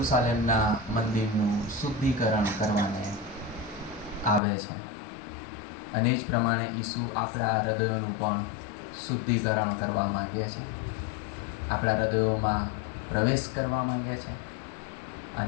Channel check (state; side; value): drops out; right; at 4.4 s